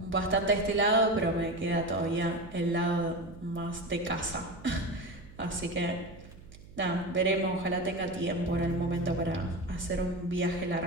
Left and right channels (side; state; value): right; noise; hum, 19 dB below the sound